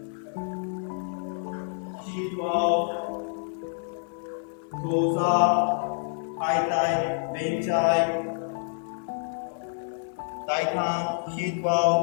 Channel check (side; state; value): right; silent; 60 dB below the other